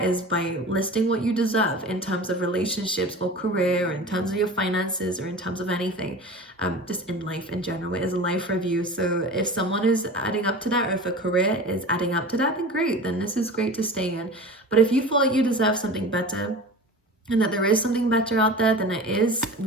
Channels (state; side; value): normal; both; correlation 0.35